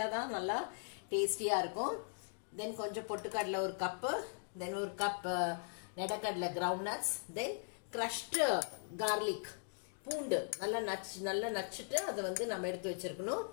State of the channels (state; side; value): silent; right; digital silence